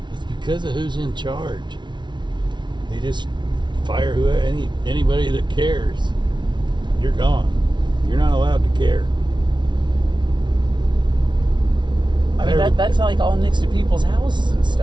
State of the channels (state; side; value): late; left; 0.22 ms